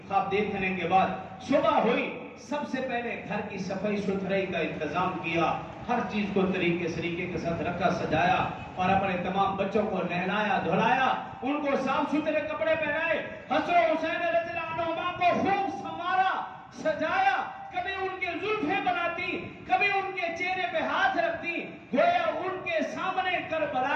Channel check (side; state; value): both; identical; correlation 1.00